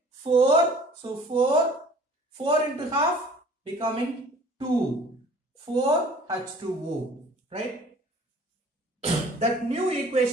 4. So 4 into half becoming 2. 4H2O. Right? That new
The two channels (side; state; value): both; normal; correlation 0.49